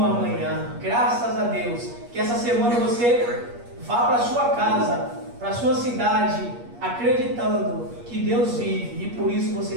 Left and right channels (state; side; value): late; left; 8.4 ms